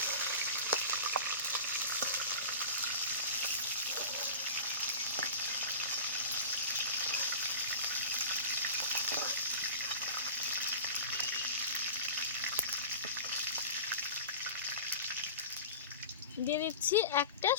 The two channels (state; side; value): inverted; both; correlation -0.33